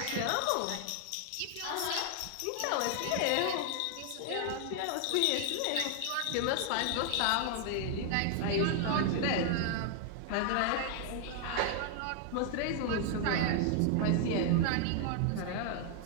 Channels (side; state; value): both; different; correlation 0.00